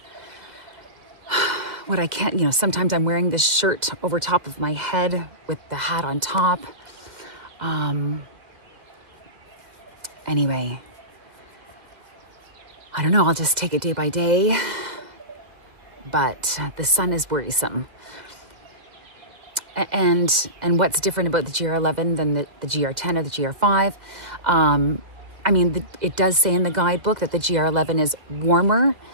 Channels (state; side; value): late; left; 2.1 ms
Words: what I can. Sometimes I'm wearing this shirt over top of my head with the hat on top. Anyway, I don't know, I'll just take it day by day. But the sun is worrisome. And what's different about the GR11 than the GR10 or the GR5? I mean, it does say in the guidebook that the GR11 is warmer